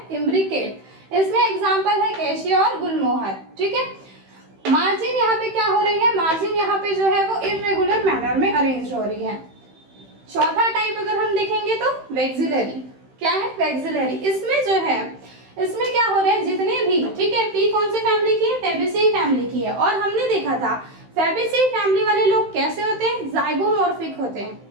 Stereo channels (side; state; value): left; late; 15 ms